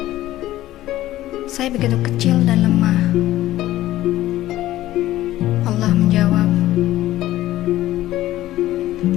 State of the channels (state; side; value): quieter; right; 14.9 dB